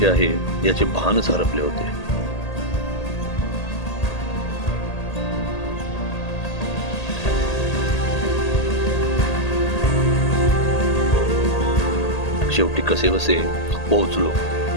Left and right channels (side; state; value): right; late; 1.8 ms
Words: आहे याचे भानच हरपले होते. शेवटी कसेबसे पोहोचलो